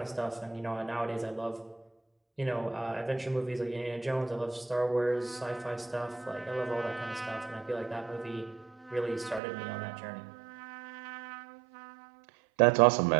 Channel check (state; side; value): drops out; left; at 9.4 s